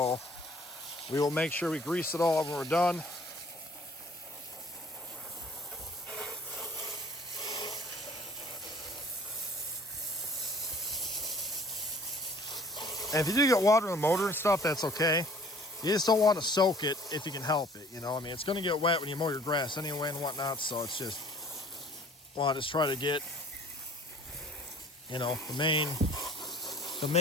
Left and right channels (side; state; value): both; normal; correlation 0.51